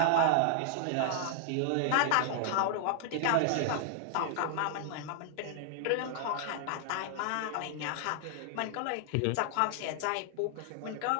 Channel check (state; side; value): different; both; correlation 0.00